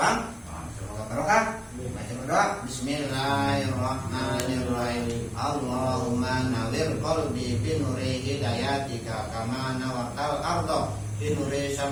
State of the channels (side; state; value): both; identical; correlation 1.00